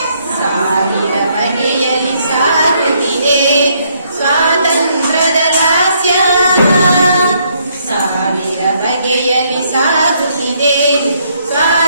ಸಾವಿರ ಬಗೆಯಲ್ಲಿ ಸಾಗುತ್ತಿದೆ ಸ್ವಾತಂತ್ರ್ಯದ ಲಾಸ್ಯ, ಸಾವಿರ ಬಗೆಯಲ್ಲಿ ಸಾಗುತ್ತಿದೆ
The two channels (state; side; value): inverted; both; correlation -0.71